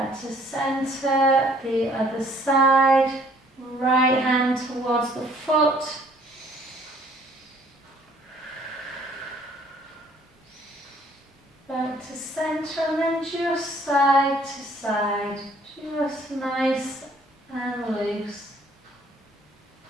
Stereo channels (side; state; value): both; normal; correlation 0.60